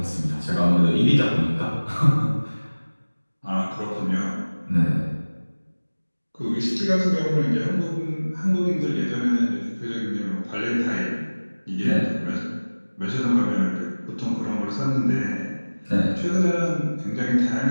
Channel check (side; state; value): both; inverted; correlation -1.00